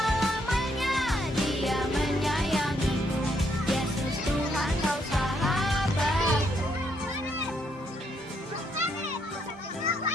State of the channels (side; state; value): both; normal; correlation 0.74